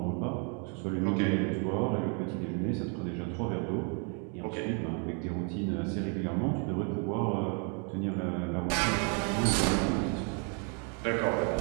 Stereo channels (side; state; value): left; quieter; 38.3 dB